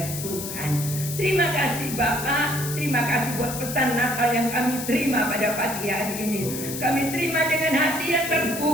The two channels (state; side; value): noise; left; hiss, 7 dB below the sound